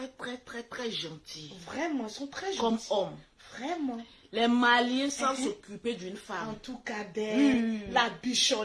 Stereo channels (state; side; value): identical; both; correlation 1.00